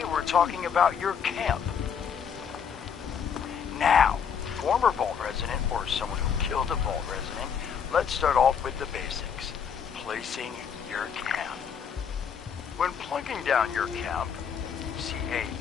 we're talking about your camp. Now, former Vault resident or someone who killed a Vault resident, let's start off with the basics. Placing your camp. When plunking down your camp,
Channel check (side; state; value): right; quieter; 7.2 dB